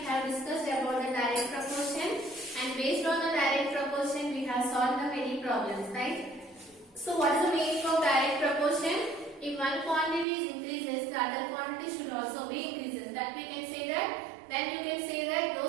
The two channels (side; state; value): left; drops out; at 10.2 s